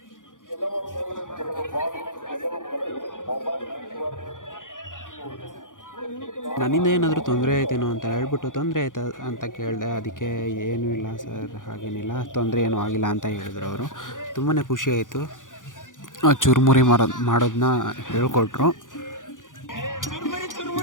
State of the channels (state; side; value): late; right; 0.88 ms